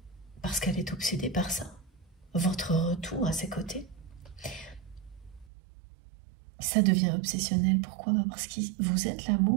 Parce qu'elle est obsédée par ça. Votre retour à ses côtés. Ça devient obsessionnel. Pourquoi? Parce que vous êtes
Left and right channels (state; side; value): drops out; left; at 5.5 s